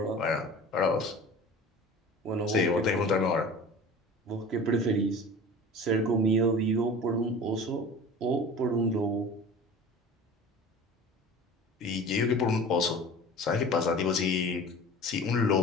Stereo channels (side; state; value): both; normal; correlation 0.39